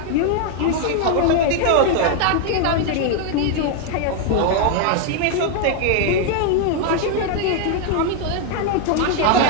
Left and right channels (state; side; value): different; both; correlation 0.00